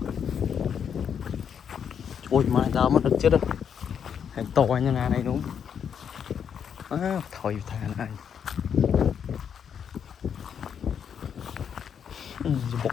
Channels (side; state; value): right; quieter; 7.8 dB